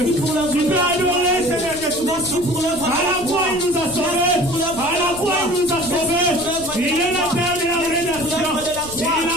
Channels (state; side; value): noise; left; rumble, 16 dB below the sound